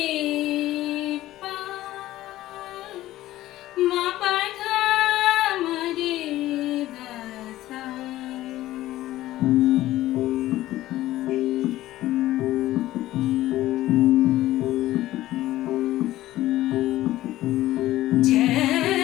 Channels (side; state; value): right; quieter; 15.4 dB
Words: পা মা পা ধা মা রে ধা সা।